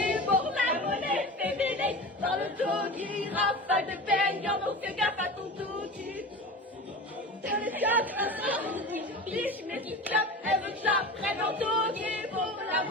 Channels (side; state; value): both; normal; correlation 0.31